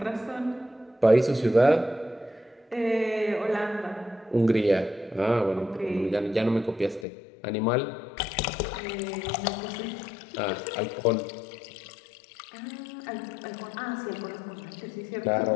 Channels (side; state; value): right; drops out; at 7.1 s